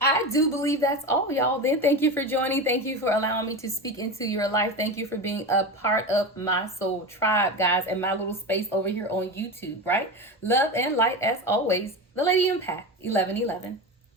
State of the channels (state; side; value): normal; both; correlation 0.23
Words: I do believe that's all, y'all. Then thank you for joining. Thank you for allowing me to speak into your life. Thank you for being a part of my soul tribe, guys, and my little space over here on YouTube, right? Love and light as always. The Lady Empath 1111.